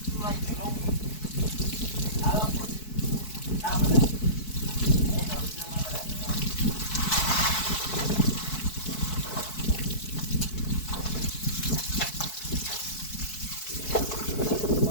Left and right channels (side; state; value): right; late; 4.6 ms